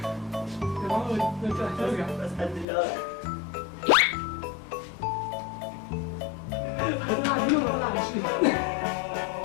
بس قد الله.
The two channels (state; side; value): drops out; right; at 2.7 s